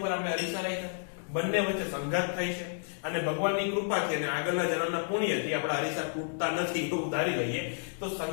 આપણે અરીસા રાખ્યા, બંને વચ્ચે સંઘાત થાય છે. અને ભગવાનની કૃપાથી અને આગળના જન્મના પુણ્યથી આપણા અરીસા તૂટતા નથી એવું ધારી લઈએ. તો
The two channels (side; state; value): right; silent; digital silence